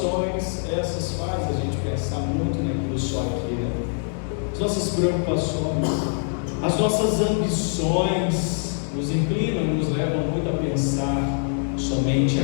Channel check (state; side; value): silent; right; 63 dB below the other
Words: Essas fazem a gente pensar muito naquilo só aqui, né? As nossas preocupações, as nossas ambições nos inclinam e nos levam muito a pensar somente